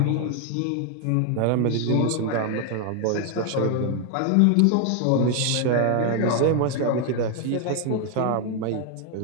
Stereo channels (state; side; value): different; both; correlation 0.00